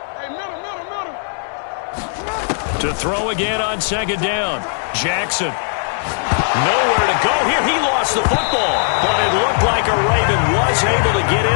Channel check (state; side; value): silent; right; digital silence